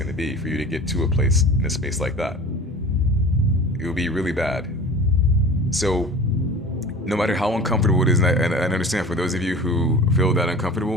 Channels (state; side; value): normal; both; correlation 0.39